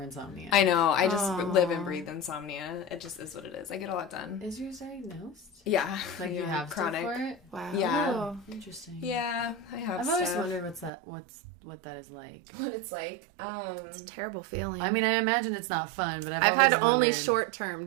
insomnia. I know. I just live and breathe insomnia. It just is what it is. I get a lot done. Is yours diagnosed? Yeah. Like you have chronic for it? Wow. Yeah. Interesting. Yeah, I have I've always wondered what that is like. What it's like. It's a terrible feeling. I mean, I imagine it's not fun, but I've had only short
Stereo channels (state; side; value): drops out; left; at 10.9 s